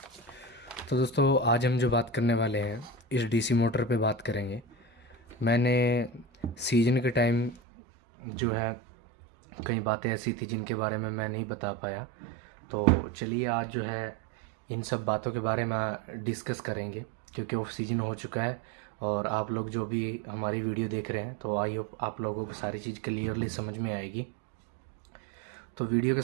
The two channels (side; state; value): left; drops out; at 7.6 s